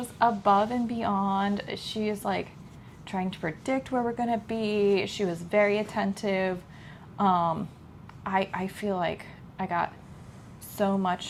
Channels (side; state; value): both; identical; correlation 1.00